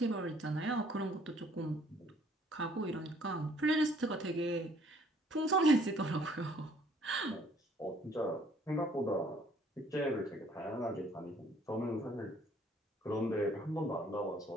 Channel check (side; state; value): both; normal; correlation 0.60